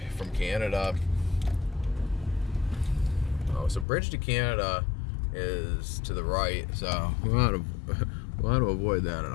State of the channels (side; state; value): right; drops out; at 3.9 s